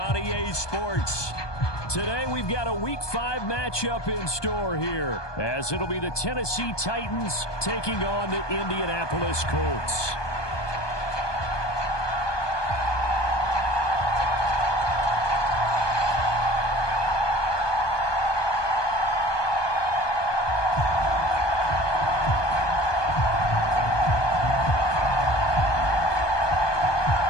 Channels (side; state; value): right; late; 1.2 ms